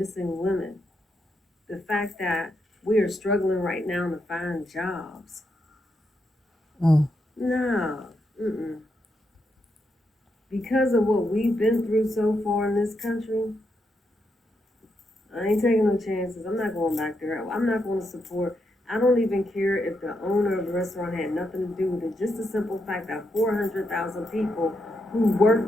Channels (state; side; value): normal; both; correlation 0.82